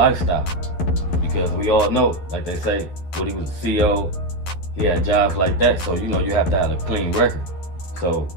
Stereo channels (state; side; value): late; right; 11 ms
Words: Because we all know, like they say, when he was a CEO, he had jobs like that. So, you know, you have to have a clean record. So